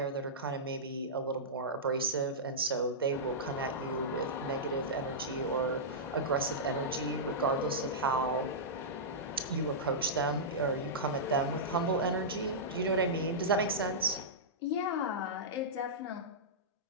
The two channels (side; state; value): both; normal; correlation -0.14